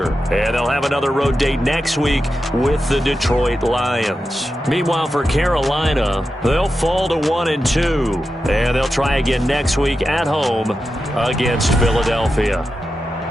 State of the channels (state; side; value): normal; both; correlation 0.90